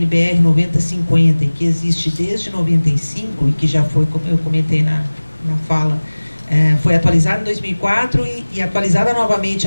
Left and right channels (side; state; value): both; inverted; correlation -1.00